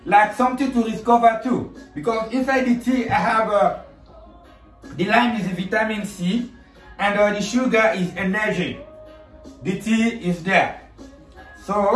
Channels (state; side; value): identical; both; correlation 1.00